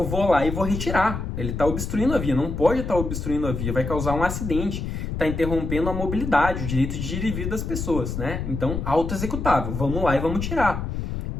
vou lá e vou retirar. Ele está obstruindo a via, não pode estar obstruindo a via, vai causar um acidente, está interrompendo a mobilidade, o direito de ir e vir das pessoas, né? Então, auto-executável, vamos lá e vamos tirar.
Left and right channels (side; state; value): left; noise; rumble, 4 dB below the sound